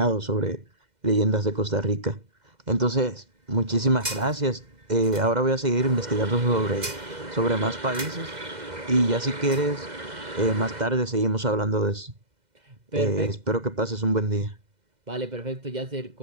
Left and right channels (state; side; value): late; left; 2.0 ms